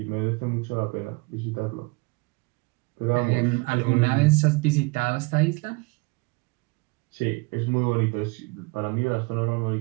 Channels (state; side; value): quieter; left; 26.7 dB